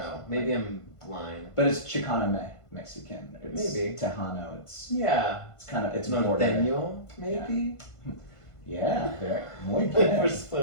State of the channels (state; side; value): late; right; 1.5 ms